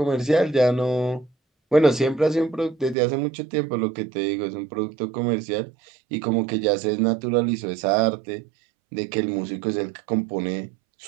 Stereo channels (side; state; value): left; drops out; at 3.0 s